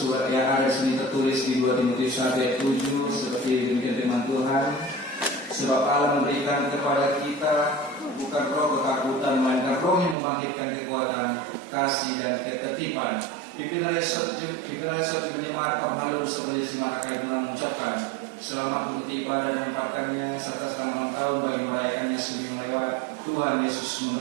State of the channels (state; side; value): drops out; left; at 10.2 s